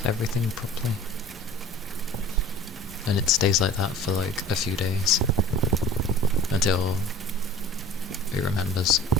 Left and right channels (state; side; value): normal; both; correlation 0.44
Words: everything properly. And it stays like that for like a few days until it remembers.